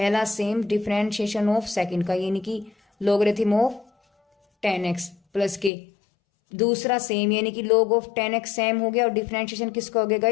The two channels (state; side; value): drops out; right; at 5.7 s